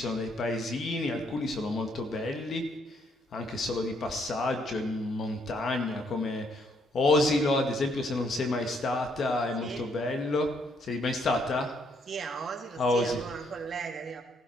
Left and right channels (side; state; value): both; normal; correlation 0.70